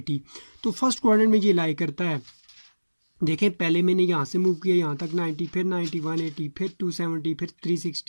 तो फर्स्ट क्वाड्रेंट में ये लाई करता है। देखें, पहले मैंने यहाँ से मूव किया यहाँ तक 90, फिर 90, 180, फिर 270, फिर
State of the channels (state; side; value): inverted; both; correlation -1.00